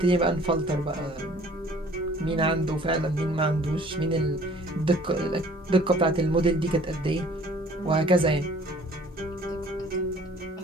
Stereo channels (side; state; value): both; normal; correlation 0.53